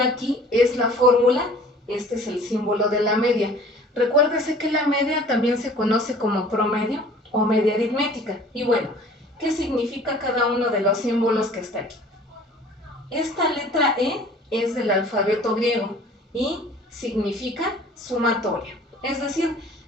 aquí es la fórmula, este es el símbolo de la media. Recuérdese que la media también se conoce como promedio o media aritmética. Y bueno, ¿qué significa cada uno de los símbolos que está aquí? Esta letra E es del alfabeto griego y significa sumatoria. Es decir,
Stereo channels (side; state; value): both; normal; correlation 0.49